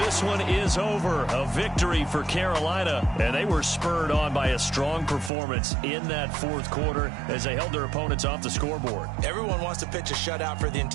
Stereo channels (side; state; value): left; drops out; at 5.3 s